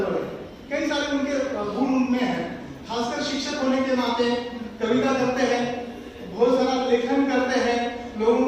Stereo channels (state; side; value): identical; both; correlation 1.00